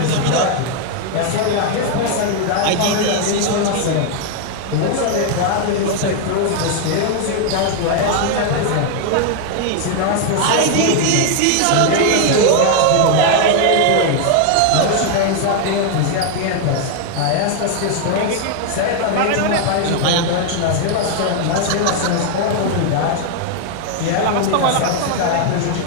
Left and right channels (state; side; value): different; both; correlation 0.00